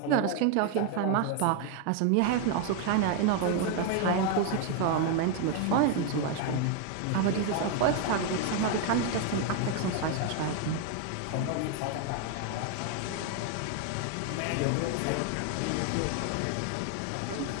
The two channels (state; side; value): different; both; correlation 0.01